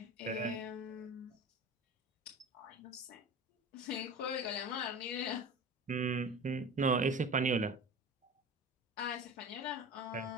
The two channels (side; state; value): both; normal; correlation 0.33